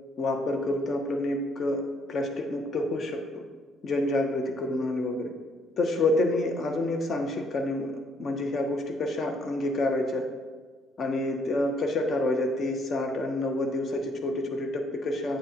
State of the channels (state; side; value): normal; both; correlation 0.67